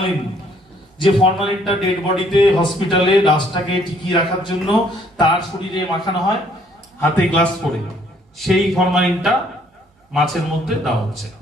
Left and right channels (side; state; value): both; normal; correlation 0.64